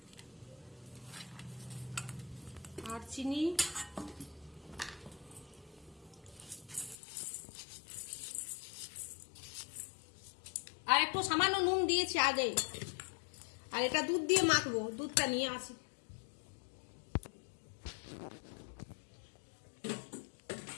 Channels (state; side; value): drops out; right; at 7.0 s